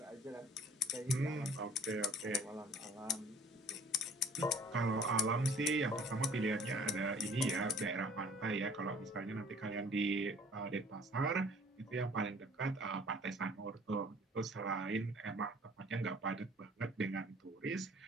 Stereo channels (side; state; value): both; normal; correlation 0.53